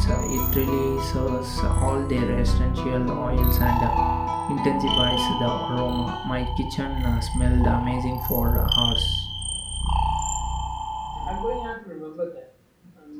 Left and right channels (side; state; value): both; identical; correlation 1.00